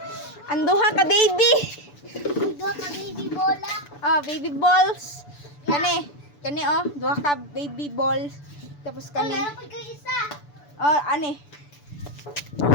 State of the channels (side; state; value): right; late; 6.9 ms